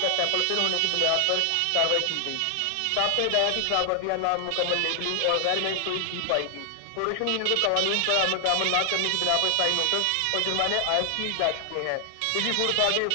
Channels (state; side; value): different; both; correlation 0.00